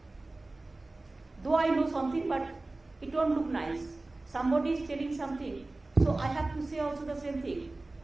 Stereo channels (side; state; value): left; quieter; 3.0 dB